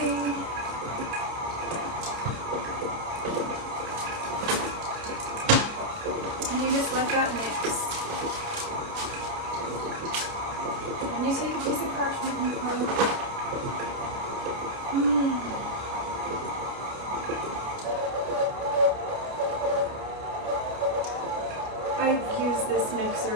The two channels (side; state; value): left; late; 29 ms